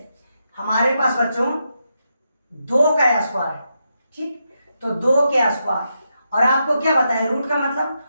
हमारे पास बच्चों 2 का स्क्वायर है, ठीक, तो 2 के स्क्वायर, और आपको क्या बताया रूट का मतलब?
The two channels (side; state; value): both; inverted; correlation -0.84